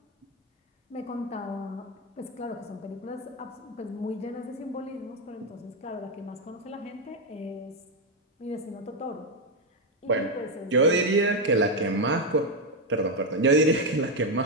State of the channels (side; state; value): both; normal; correlation 0.05